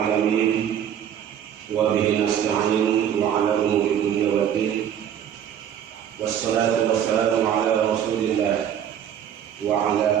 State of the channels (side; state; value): left; quieter; 9.5 dB